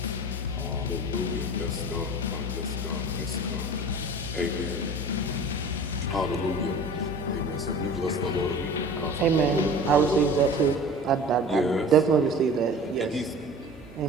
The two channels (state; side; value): normal; both; correlation 0.40